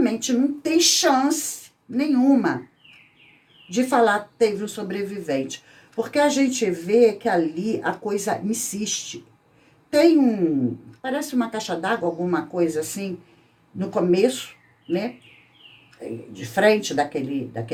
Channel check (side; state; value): both; identical; correlation 1.00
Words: não tem chance nenhuma de falar que teve um sobrevivente. Porque a gente vê que ali a coisa insiste. Tem parece uma caixa d'água, alguma coisa assim, no começo, né? De frente daquele